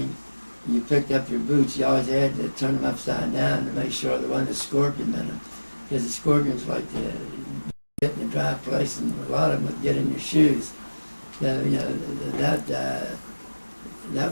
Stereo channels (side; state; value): both; inverted; correlation -1.00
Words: you picked up your boots. You always had to turn them upside down to make sure there wasn't a scorpion in them. Because the scorpions like to get in a dry place, and a lot of them would get in your shoes. So, that